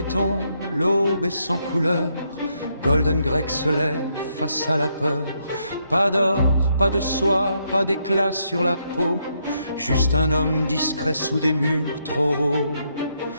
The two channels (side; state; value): both; inverted; correlation -0.77